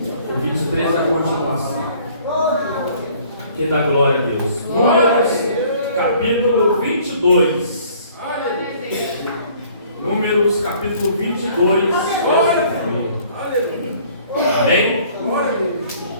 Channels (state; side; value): inverted; both; correlation -0.56